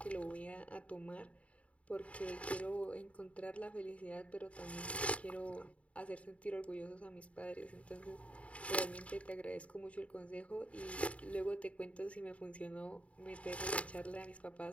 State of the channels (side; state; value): right; late; 0.065 ms